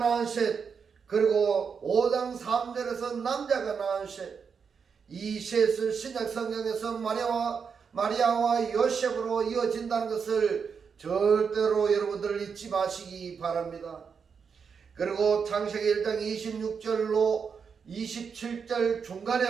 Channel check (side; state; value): left; quieter; 6.2 dB